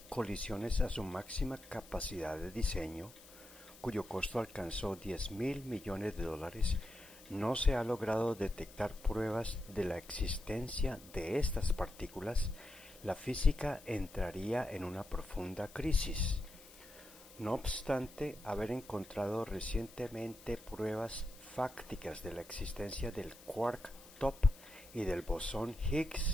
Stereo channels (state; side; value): noise; left; hiss, 20 dB below the sound